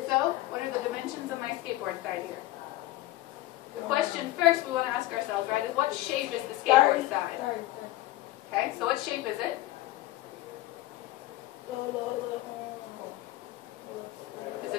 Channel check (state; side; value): quieter; right; 16.9 dB